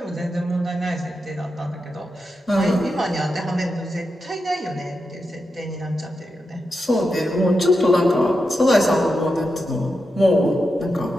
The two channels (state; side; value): normal; both; correlation 0.87